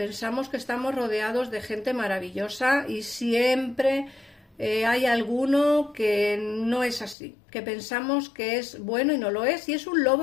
que estamos rodeados de gente maravillosa y siempre hay alguno que no es así, que pensamos que es bueno y no lo es, y es un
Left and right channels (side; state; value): right; drops out; at 7.2 s